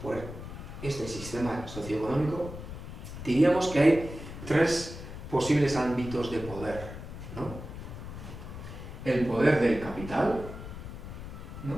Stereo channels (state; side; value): noise; left; rumble, 10 dB below the sound